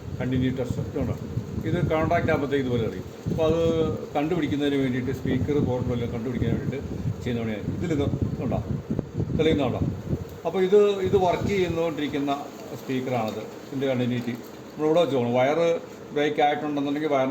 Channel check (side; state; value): both; identical; correlation 1.00